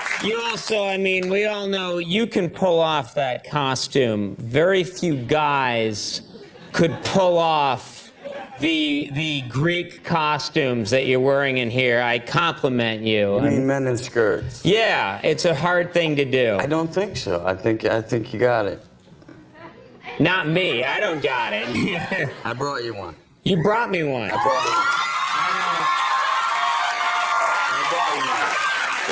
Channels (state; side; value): identical; both; correlation 1.00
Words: You also, I mean, we all know you can pull off that costume. Very few guys could pull off the Greek costumes that you're wearing in here. I compliment you. I mean, men in skirts. Yeah, it's a hard thing to do. I don't think so. I think you got it. Not me. I don't got it. I brought you one. You brought me one. I brought you one.